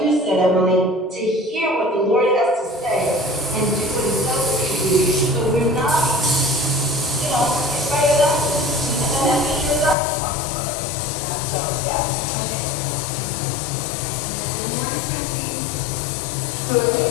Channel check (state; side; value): drops out; right; at 10.0 s